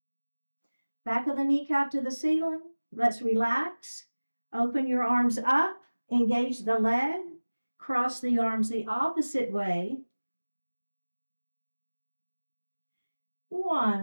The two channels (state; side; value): inverted; both; correlation -1.00